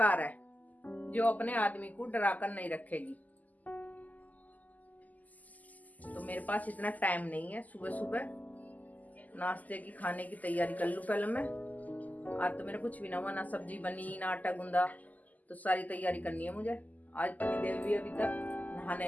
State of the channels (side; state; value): right; late; 0.079 ms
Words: है जो अपने आदमी को डरा कर नहीं रखेगी। तो मेरे पास इतना टाइम नहीं है। सुबह सुबह नाश्ते की खाने की तैयारी कर लूं पहले मैं। आज तो मेरा कुछ भी ना हुआ, ना सब्जी बनी ना आटा गूंदा, तो सारी तैयारी करनी है मुझे। आज पतिदेव भी अभी तक नहाने